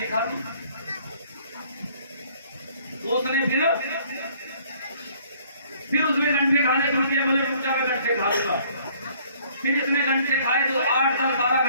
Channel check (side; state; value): both; inverted; correlation -0.59